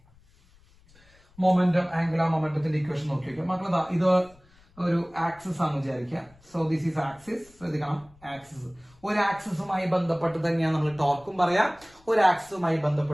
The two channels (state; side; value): noise; left; rumble, 29 dB below the sound